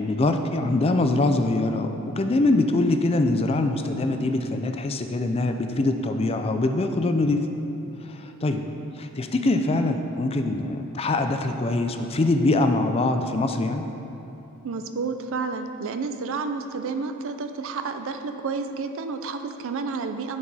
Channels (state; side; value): normal; both; correlation 0.63